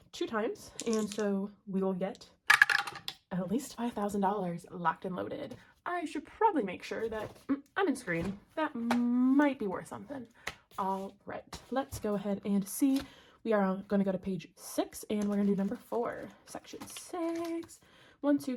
2 times. And so we will get at least $5,000 locked and loaded. I should probably make sure that I'm in screen. That might be worth something. All right, let's go ahead and see. We are going to go to page 6, and we're going to do number 4, section 6. 1, 2,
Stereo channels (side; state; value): both; identical; correlation 1.00